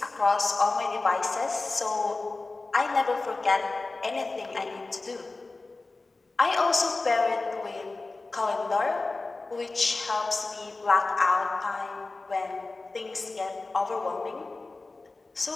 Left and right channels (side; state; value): right; quieter; 3.5 dB